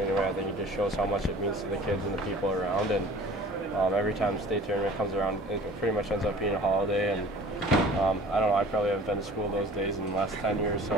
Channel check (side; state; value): both; normal; correlation 0.46